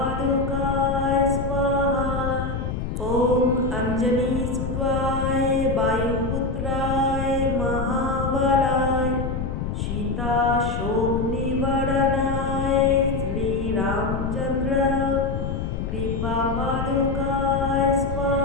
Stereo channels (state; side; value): noise; left; rumble, 3 dB below the sound